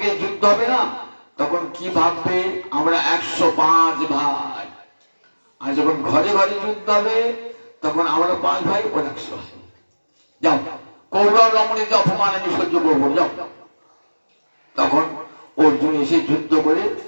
যুদ্ধ হবে না তখন কি ভাববে আমরা 105 ভাই, আর যখন ঘরে ঘরে যুদ্ধ হবে তখন আমরা 5 ভাই, ওর 100 ভাই। যাও কৌরব রমণীকে অপমান আমি সহ্য করবো, যাও। তখন অর্জুন এসে যুদ্ধ করে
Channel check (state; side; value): inverted; both; correlation -1.00